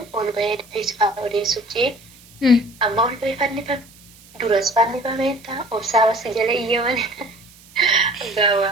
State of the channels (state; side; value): noise; right; hiss, 24 dB below the sound